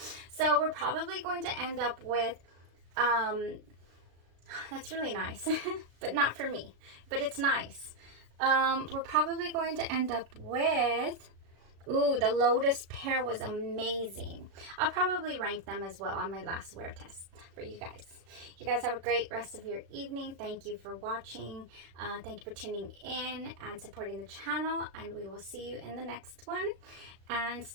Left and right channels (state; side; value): late; left; 36 ms